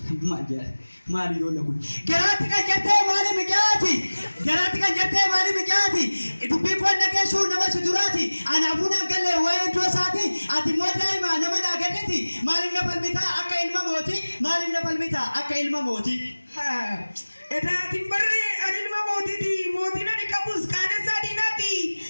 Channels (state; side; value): inverted; both; correlation -1.00